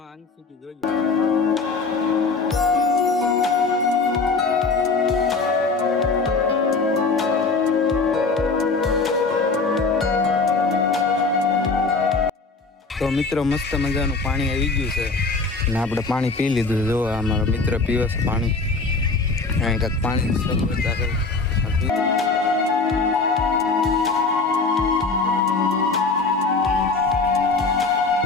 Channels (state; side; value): quieter; right; 4.0 dB